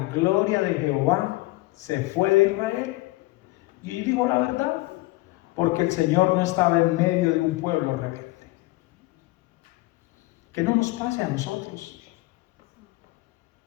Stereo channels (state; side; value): quieter; right; 20.1 dB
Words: gloria de Jehová se fue de Israel. Y yo digo la verdad, porque el Señor no estaba en medio de un pueblo rebelde. Que no nos pase a nosotros.